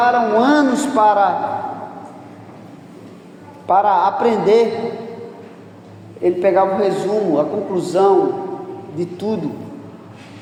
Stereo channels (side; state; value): both; identical; correlation 1.00